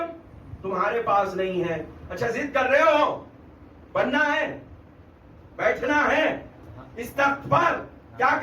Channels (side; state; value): both; identical; correlation 1.00